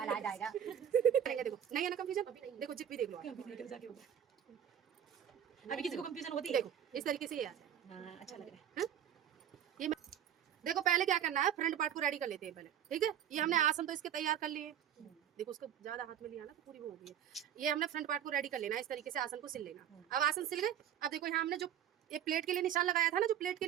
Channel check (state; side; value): quieter; left; 9.8 dB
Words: आ जाएगा। देखो नहीं है ना कंफ्यूजन। देखो जिप भी देख लो आप। अभी किसी को कंफ्यूजन होती है? देखो इस तरीके से ये आ जाए। हाँ, अच्छा लग रहा है। ये देखो पहले क्या करना है, फ्रंट पार्ट को रेडी कर लेते हैं पहले, ठीक है। ये हमने आसन तो इसके तैयार कर लिए। देखो उसको ज्यादा हाथ में लिया ना तो पूरी वो हो गई है। ये हमने फ्रंट पार्ट को रेडी कर लेना है, इस तरीके से आसन को सिल लेना। अब आसन सिल गए, अब देखो यहाँ हमने जो ये प्लेट के लिए निशान लगाया था ना, जो प्लेट के